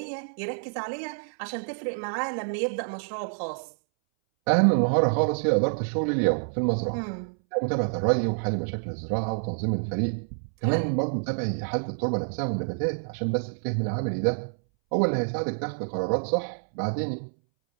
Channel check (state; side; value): silent; left; 60 dB below the other